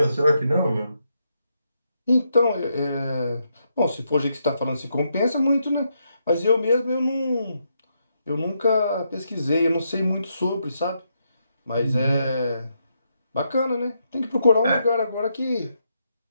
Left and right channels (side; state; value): both; inverted; correlation -0.80